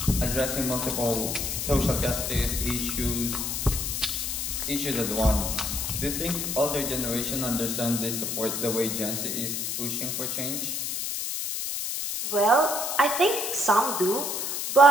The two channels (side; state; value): left; noise; hiss, 2 dB below the sound